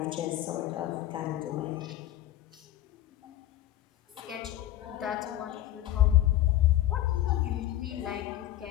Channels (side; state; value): right; quieter; 13.7 dB